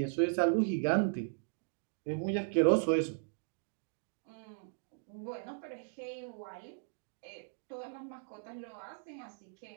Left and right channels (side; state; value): left; silent; digital silence